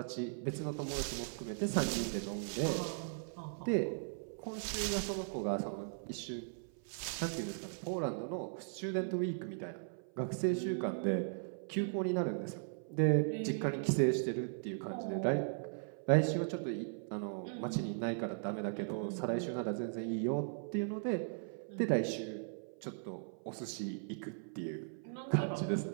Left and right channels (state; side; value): silent; left; 52 dB below the other